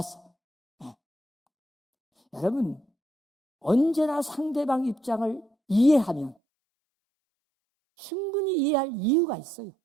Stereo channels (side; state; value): left; drops out; at 6.4 s